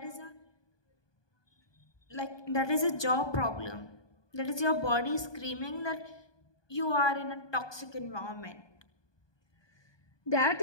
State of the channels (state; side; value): late; right; 1.2 ms